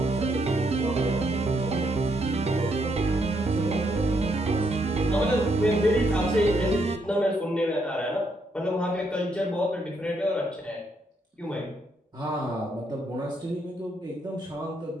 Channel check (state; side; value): normal; both; correlation 0.75